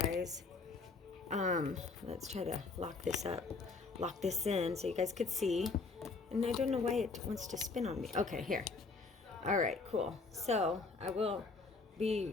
Let's try to lock this up. Lock this in so you guys could see. And I don't know why it wants to spin on me. Okay, here. All right, cool. So I will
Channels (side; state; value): right; quieter; 4.1 dB